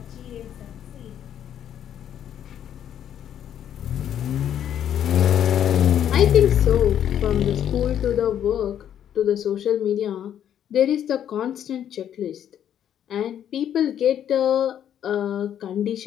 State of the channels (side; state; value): right; quieter; 9.9 dB